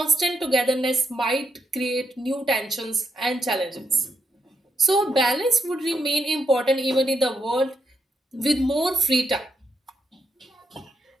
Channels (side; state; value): both; normal; correlation 0.78